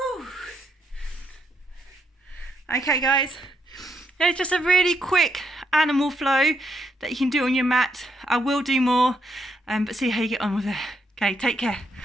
Okay guys, it's just a really quick animal flow that you can do on your mat. I will do more, but see how you get on with it. Okay, take care.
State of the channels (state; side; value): normal; both; correlation 0.77